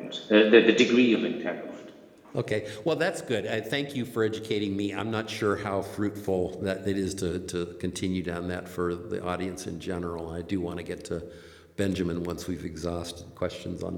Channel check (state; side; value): identical; both; correlation 1.00